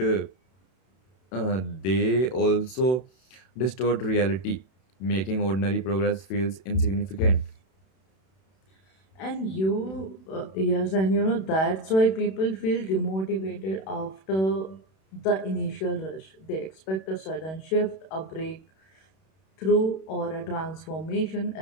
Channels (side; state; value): right; late; 31 ms